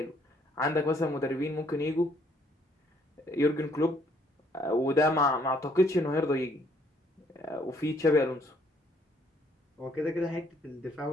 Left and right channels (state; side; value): normal; both; correlation 0.66